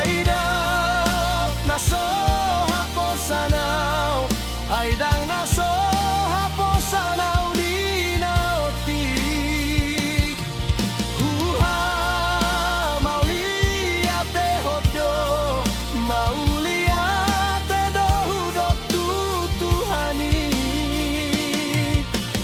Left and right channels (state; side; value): identical; both; correlation 1.00